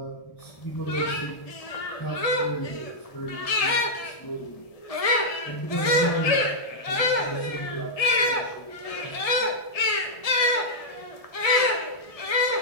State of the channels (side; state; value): right; late; 1.6 ms